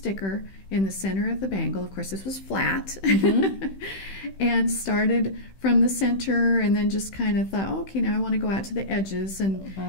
in the center of the bangle. Of course, this was flat, and started from the center, and then just kind of thought, okay, now I want to go out to the edges, and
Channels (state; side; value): late; right; 15 ms